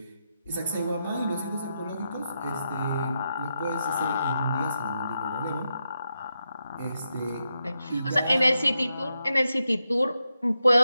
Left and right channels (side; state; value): both; inverted; correlation -0.85